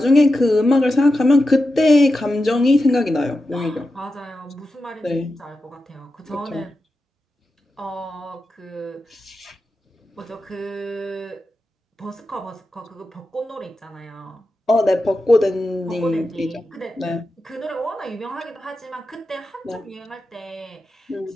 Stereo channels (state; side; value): normal; both; correlation 0.90